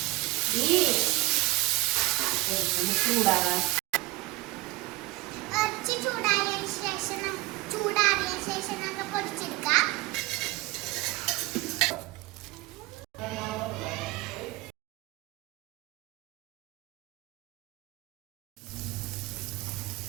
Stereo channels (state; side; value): quieter; left; 20.7 dB